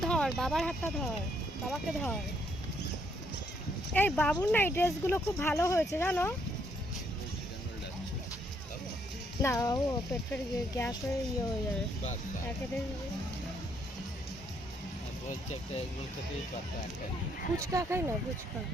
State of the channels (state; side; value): normal; both; correlation 0.72